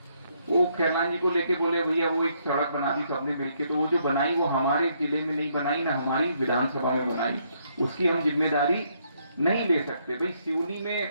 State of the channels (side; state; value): both; inverted; correlation -0.72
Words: वो खैरलान जी को लेके बोले भैया वो एक सड़क बना दी सबने मिलके, तो वो जो बनाई वो हमारे जिले में नहीं बनाई, ना हमारी विधानसभा में बनाई, उसकी हम जिम्मेदारी नहीं ले सकते। भाई